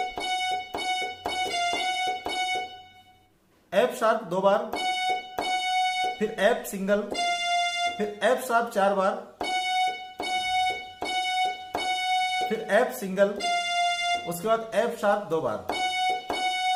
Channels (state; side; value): identical; both; correlation 1.00